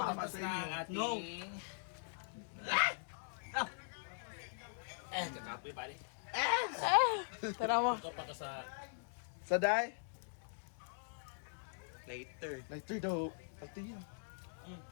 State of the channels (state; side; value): silent; right; digital silence